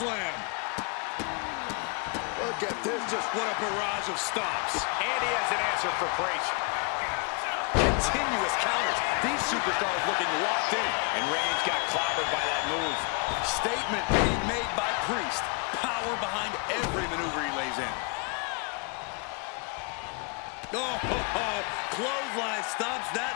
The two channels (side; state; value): right; quieter; 34.4 dB